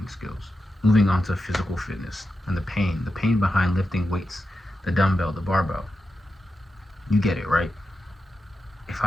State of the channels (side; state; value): both; normal; correlation 0.89